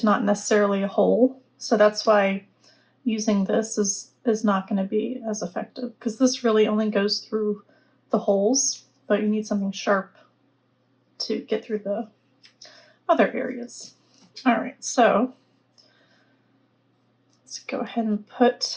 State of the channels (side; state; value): both; identical; correlation 1.00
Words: not necessarily a hole. So that's why using this is not going to be as effective, because this really only goes through the holes, but you need something sharp to get through the other areas. All right, so let's go ahead and